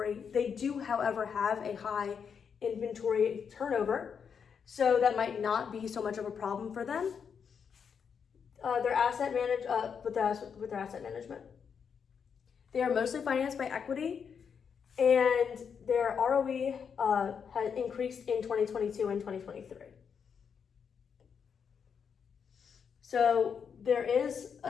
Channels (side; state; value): right; quieter; 6.8 dB